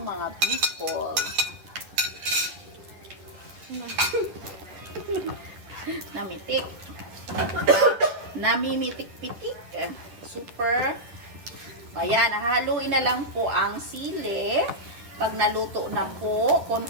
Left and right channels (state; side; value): late; left; 11 ms